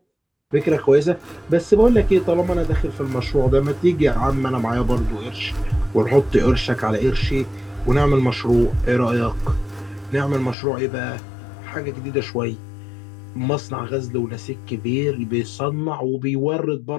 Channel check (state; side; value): drops out; right; at 10.6 s